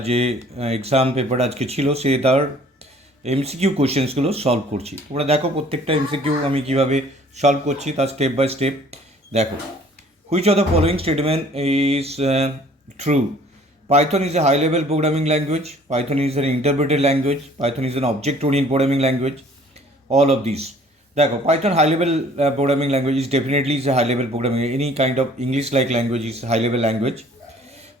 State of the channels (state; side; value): normal; both; correlation 0.55